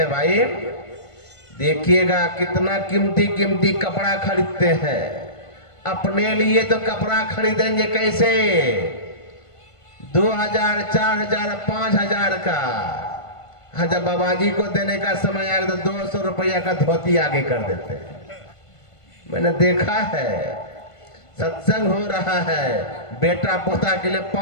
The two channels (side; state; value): right; late; 1.5 ms